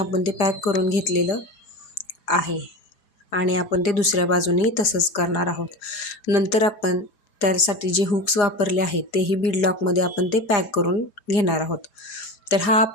ते पॅक करून घेतलेलं आहे आणि आपण ते दुसऱ्या बाजूनेही तसंच करणार आहोत. नंतर आपण त्यासाठी जे हुक्स वापरले आहेत तेही बीड लॉकमध्ये आपण ते पॅक करून घेणार आहोत. तर हा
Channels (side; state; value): right; late; 4.9 ms